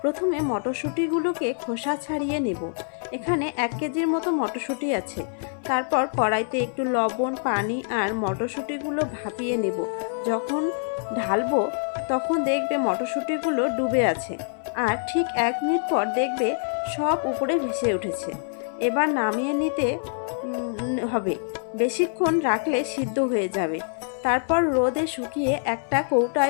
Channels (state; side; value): silent; right; 58 dB below the other